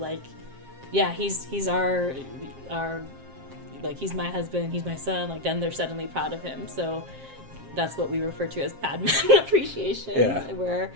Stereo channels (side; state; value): left; late; 7.5 ms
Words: yeah, he's our like, he's my husband, he's my son. Like, then they're suddenly proud of him. So that's what we refer to as Padman appreciation, Yeah. where